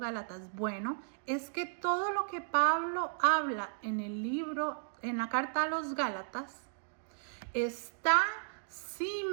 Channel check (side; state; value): left; silent; digital silence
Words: Bueno, es que todo lo que Pablo habla en el libro, en la carta a los Gálatas, está